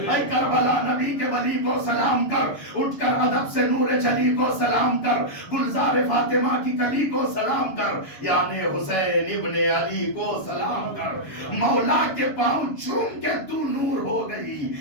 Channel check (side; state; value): right; late; 7.0 ms